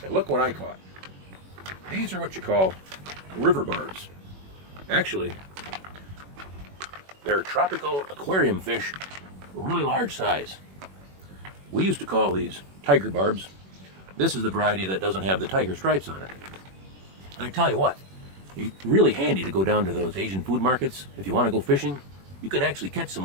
And look what I caught. These are what you call river barbs. Actually, they're tropical aquarium fish, really large size. We used to call these tiger barbs. This is the variety that doesn't have the tiger stripes on it. And I tell you what, it's really handy to go down to those Asian food markets. If you want to go fishing, you can actually catch some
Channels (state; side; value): late; left; 21 ms